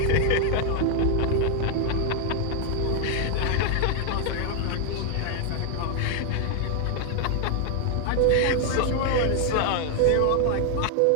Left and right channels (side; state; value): both; different; correlation 0.00